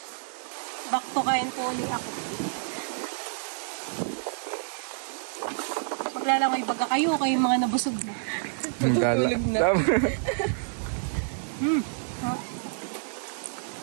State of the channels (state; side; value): silent; left; 59 dB below the other